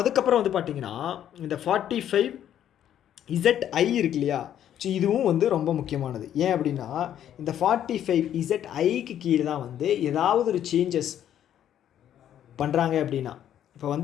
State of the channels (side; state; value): right; quieter; 10.5 dB